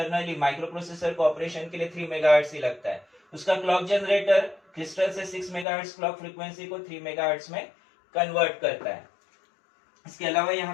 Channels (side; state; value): right; drops out; at 5.7 s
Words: माइक्रो प्रोसेसर को ऑपरेशन के लिए 3 मेगाहर्ट्ज ही लगता है। उसका क्लॉक जनरेटर क्रिस्टल से 6 मेगाहर्ट्ज क्लॉक फ्रीक्वेंसी को 3 मेगाहर्ट्ज में कन्वर्ट करता है। इसके अलावा